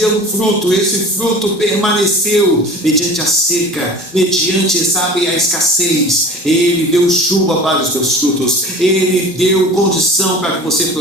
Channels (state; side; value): normal; both; correlation 0.40